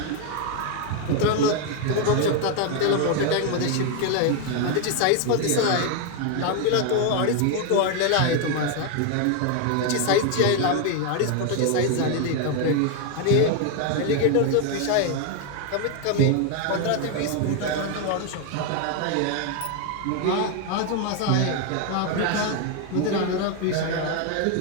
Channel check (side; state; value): both; different; correlation 0.01